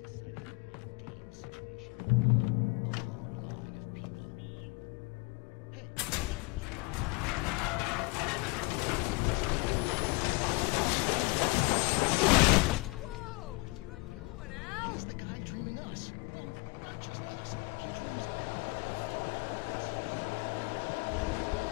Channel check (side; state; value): right; quieter; 27.1 dB